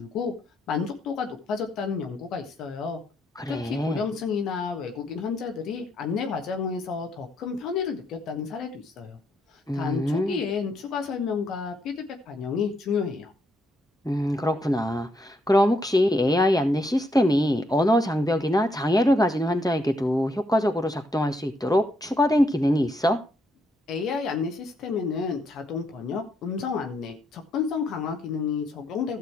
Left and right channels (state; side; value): normal; both; correlation 0.75